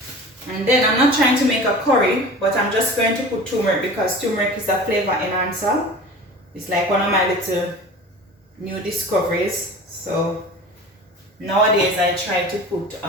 And then I'm not trying to make a curry, but I'm just going to put turmeric, because turmeric is a flavor enhancer. It's like one of my little new discoveries. So nowadays I try to put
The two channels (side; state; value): both; normal; correlation 0.38